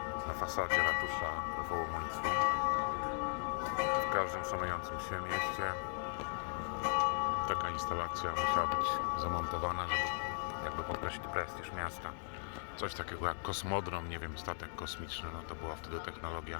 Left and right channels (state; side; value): silent; right; digital silence